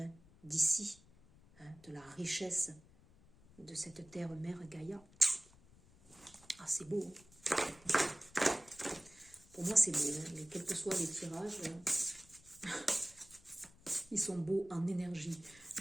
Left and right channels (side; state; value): left; noise; rumble, 25 dB below the sound